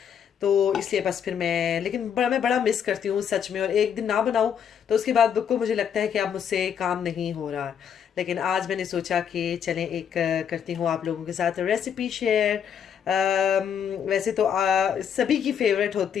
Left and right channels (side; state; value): right; quieter; 8.1 dB